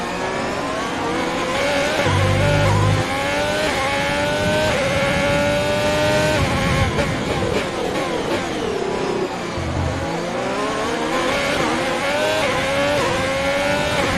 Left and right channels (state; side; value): identical; both; correlation 1.00